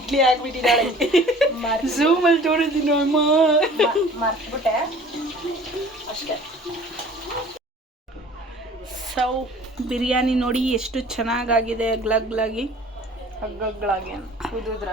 ಹಾಕ್ಬಿಟ್ಟಿದ್ದಾಳೆ. ಝೂಮಲ್ಲಿ ತೋರಿದ್ದೀನಿ ಅಮ್ಮ. ಮರ್ತ್ಬಿಟ್ಟೆ ಅಷ್ಟೇ. ಸೊ ಬಿರಿಯಾನಿ ನೋಡಿ ಎಷ್ಟು ಚೆನ್ನಾಗಾಗಿದೆ, ಗ್ಲಗ್ಲಾಗಿ ಹಗ್ಗಗಳಾಗಿ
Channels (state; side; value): normal; both; correlation 0.48